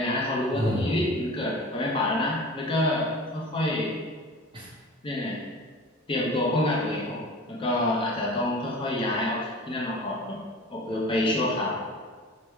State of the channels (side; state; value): both; normal; correlation 0.38